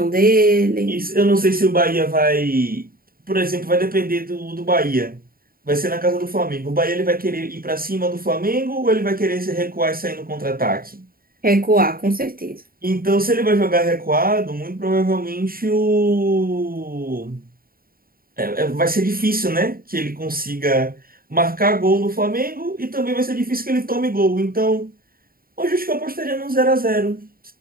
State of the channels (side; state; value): left; late; 0.43 ms